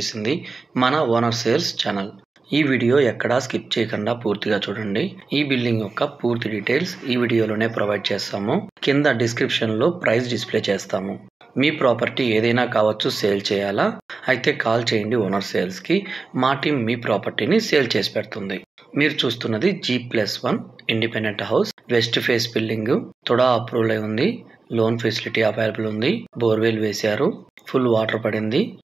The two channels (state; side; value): quieter; left; 4.0 dB